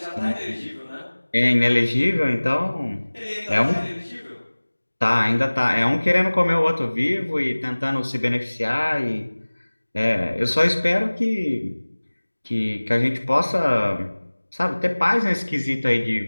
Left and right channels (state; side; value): inverted; both; correlation -1.00